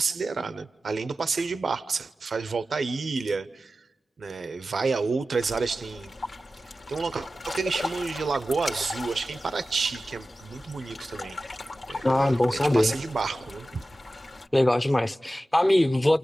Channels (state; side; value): normal; both; correlation 0.94